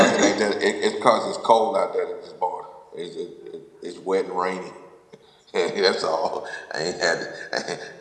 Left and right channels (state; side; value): identical; both; correlation 1.00